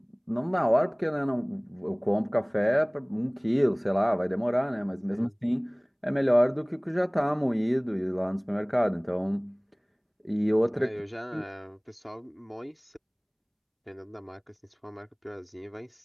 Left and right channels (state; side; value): identical; both; correlation 1.00